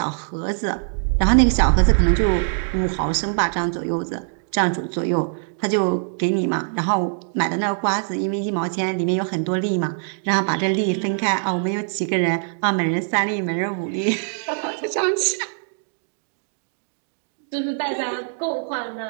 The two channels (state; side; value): silent; left; digital silence